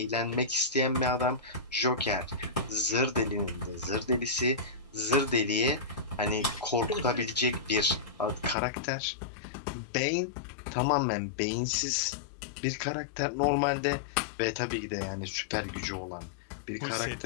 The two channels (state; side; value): drops out; right; at 8.6 s